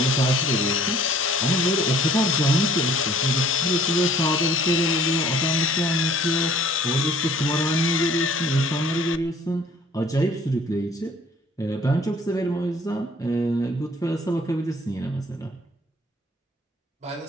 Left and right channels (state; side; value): normal; both; correlation 0.55